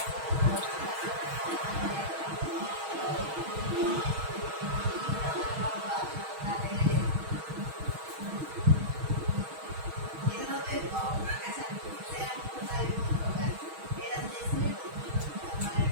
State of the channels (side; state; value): left; late; 6.3 ms